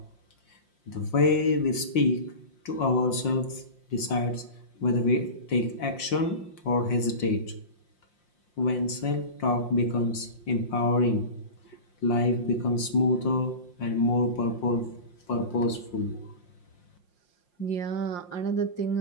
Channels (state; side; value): late; right; 5.7 ms